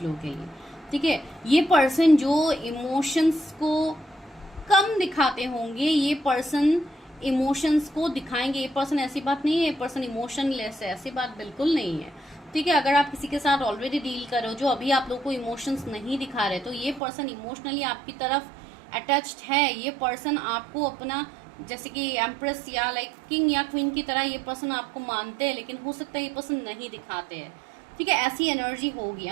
लोगों के लिए। ठीक है, ये पर्सन जो इमोशंस को कम दिखाते होंगे, ये पर्सन इमोशंस को दिखाएंगे। ये पर्सन, ऐसी बात नहीं है ये पर्सन इमोशनलेस है, ऐसी बात बिल्कुल नहीं है। ठीक है, अगर आप किसी के साथ ऑलरेडी डील कर रहे हो जो अभी आप लोग को इमोशंस नहीं दिखा रहे, तो ये पर्सन इमोशनली आपकी तरफ अटैच्ड है। ये पर्सन आपको अपना, जैसे कि एम्प्रेस या लाइक किंग या क्वीन की तरह ये पर्सन आपको मानते हैं, लेकिन हो सकता है ये पर्सन नहीं दिखाते हैं। ठीक है, ऐसी एनर्जी होगी।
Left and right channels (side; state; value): left; drops out; at 17.0 s